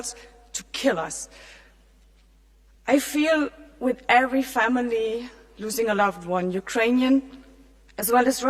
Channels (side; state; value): both; identical; correlation 1.00